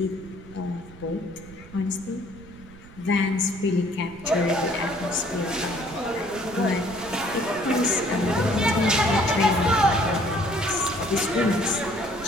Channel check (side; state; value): right; noise; rumble, 19 dB below the sound